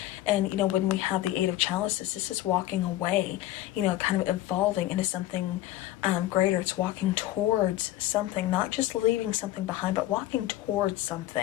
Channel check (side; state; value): right; quieter; 14.8 dB